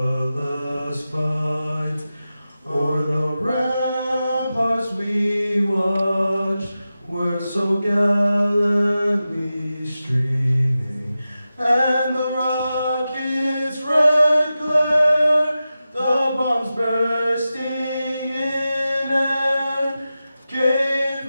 fight o'er the ramparts we watched were so gallantly streaming, and the rocket's red glare, the bombs bursting in air, came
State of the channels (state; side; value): inverted; both; correlation -0.93